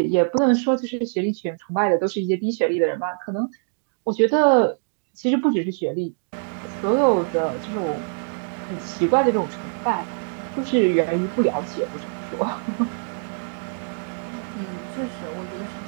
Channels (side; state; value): left; silent; 63 dB below the other